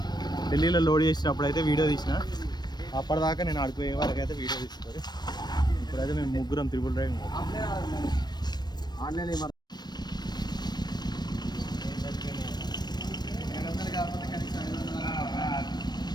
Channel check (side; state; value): right; late; 0.20 ms